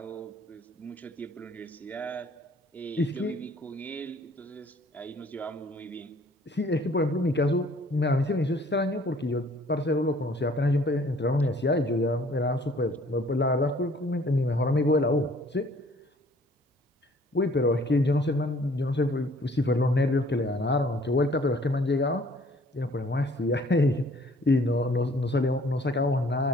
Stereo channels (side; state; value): both; normal; correlation 0.57